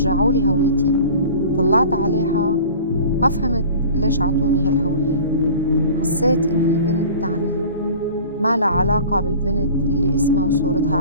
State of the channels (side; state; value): both; inverted; correlation -0.42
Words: لي هويتي. طلعت عليها ما فهمت ليش عطوني هالهوية. حسيت إني بنت تانية ما لها علاقة بالبنت اللي اسمها وصورتها